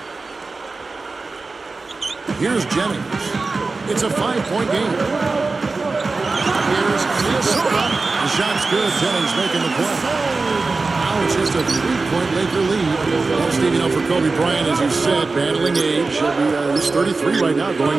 Here's Jennings. It's a 5-point game. Here's Minnesota. The shot's good. Jennings making the play. Now it's just a 3-point Laker lead. Well, Steve, you know, for Kobe Bryant, as you said, battling age. He's 33 right now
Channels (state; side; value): quieter; left; 3.8 dB